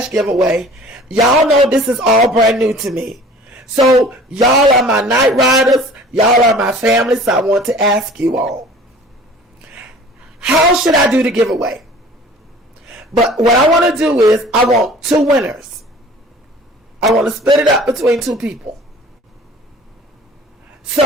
giveaway. Y'all know this is all brand new to me. So y'all are my night riders. Y'all are my family. So I want to ask you all. how should I do the giveaway? But what I want to do is I want 2 winners. I want to split it up between 2 people.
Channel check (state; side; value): normal; both; correlation 0.46